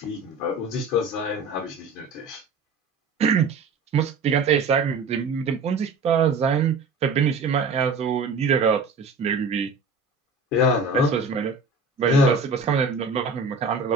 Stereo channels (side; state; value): left; quieter; 3.8 dB